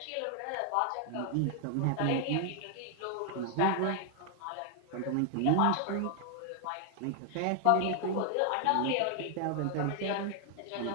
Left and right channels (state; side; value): different; both; correlation 0.00